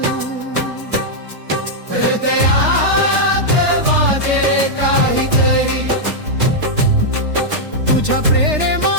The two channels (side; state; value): left; late; 3.4 ms